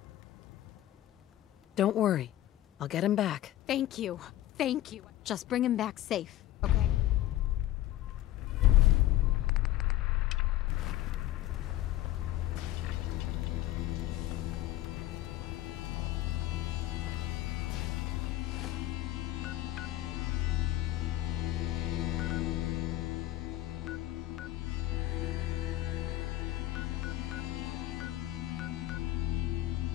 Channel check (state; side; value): quieter; right; 14.5 dB